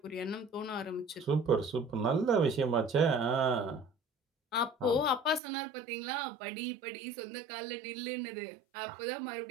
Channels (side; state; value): left; drops out; at 5.4 s